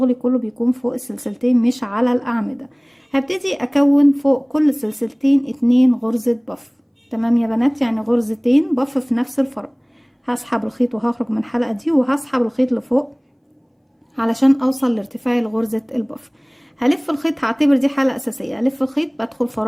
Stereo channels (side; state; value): both; identical; correlation 1.00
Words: كله بيكون فوق السلسلتين مش على الاعمدة. هبتدي اكون فوق كل سلسلتين 2 غرزة بف. تمام يا بنات؟ يعني غرزتين بف في نفس الفراغ. هسحب الخيط وهخرج من الحلقة دي، وهسحب الخيط لفوق علشان اوصل لارتفاع غرزة البف. هلف الخيط، هعتبر دي حلقة اساسية. الف الخيط، بدخل